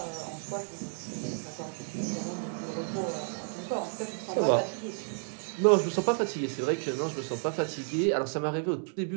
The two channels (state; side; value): silent; left; 57 dB below the other